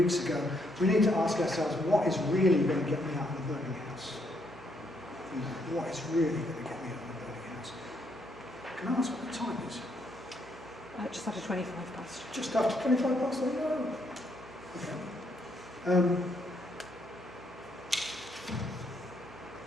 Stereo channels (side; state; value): right; noise; hum, 24 dB below the sound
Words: ago, we need to ask ourselves, what is really going to get me out of the burning house? What is really going to get me out of the burning house? Can I ask what the time is? Just after 25 past. Just after 25 past? Oh, no. Okay.